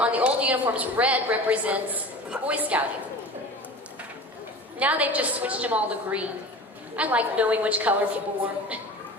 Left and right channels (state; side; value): normal; both; correlation 0.36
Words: the old uniforms, red represents Boy Scouting. Now they've just switched them all to green. I like knowing which color people wore.